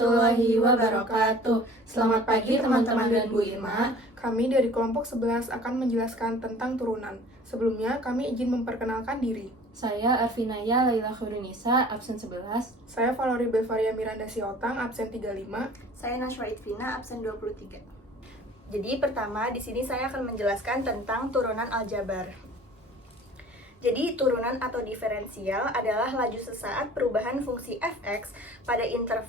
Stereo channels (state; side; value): normal; both; correlation 0.47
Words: wabarakatuh. Selamat pagi teman-teman dan Bu Irma. Kami dari kelompok 11 akan menjelaskan tentang turunan. Sebelumnya, kami izin memperkenalkan diri. Saya Arvinaya Laila Khurunisa, absen 11. Saya Valori Belvaria Miranda Siotang, absen 35. Saya Nashwa Itvina, absen 23. Jadi pertama, di sini saya akan menjelaskan tentang turunan aljabar. Jadi turunan atau diferensial adalah laju sesaat perubahan fungsi fx pada